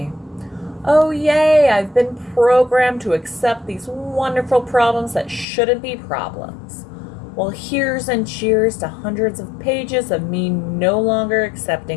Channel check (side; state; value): right; drops out; at 5.5 s